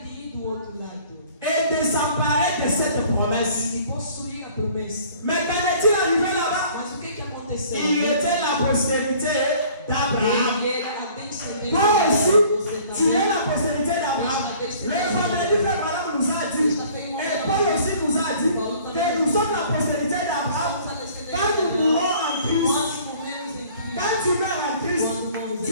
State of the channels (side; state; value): both; inverted; correlation -0.53